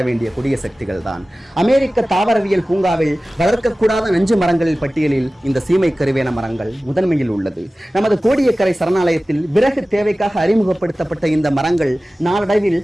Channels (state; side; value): normal; both; correlation 0.97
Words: வேண்டிய கொடிய சக்திகள் தான். அமெரிக்க தாவரவியல் பூங்காவில் வளர்க்கக்கூடாத நஞ்சு மரங்களில் பட்டியலில் இந்த சீமை கருவேல மரங்கள் முதன்மையில் உள்ளது. நமது கோடியக்கரை சரணாலயத்தில் விறகு தேவைக்காக அறிமுகப்படுத்தப்பட்ட இந்த மரங்கள் நாளடைவில்